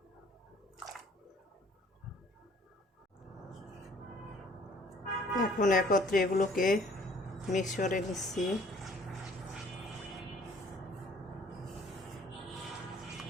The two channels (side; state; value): both; normal; correlation 0.58